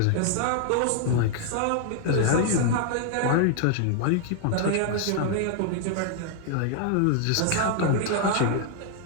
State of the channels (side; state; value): both; different; correlation 0.00